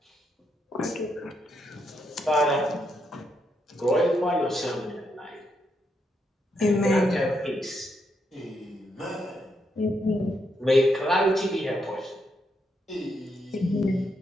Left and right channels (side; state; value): both; normal; correlation 0.79